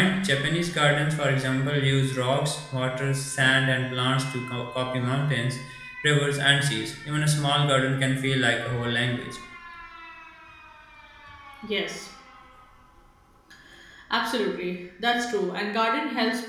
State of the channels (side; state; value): both; identical; correlation 1.00